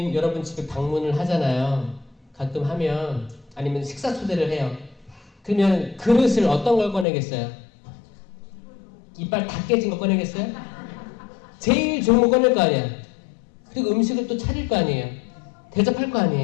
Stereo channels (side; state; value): right; drops out; at 7.1 s